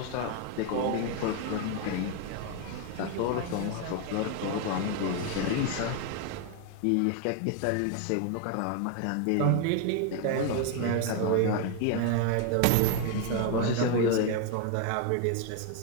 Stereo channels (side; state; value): both; different; correlation 0.01